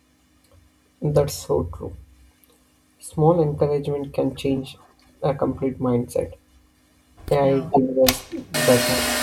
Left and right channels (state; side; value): identical; both; correlation 1.00